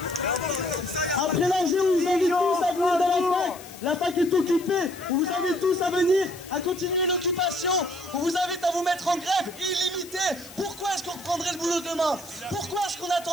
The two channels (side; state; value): left; noise; hiss, 18 dB below the sound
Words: Après l'enjeu, on vous invite tous à venir dans la fac. La fac est occupée. On vous invite tous à venir, à continuer l'occupation. On vous invite à vous mettre en grève illimitée. Pourquoi est-ce qu'on reprendrait le boulot demain? Pourquoi est-ce qu'on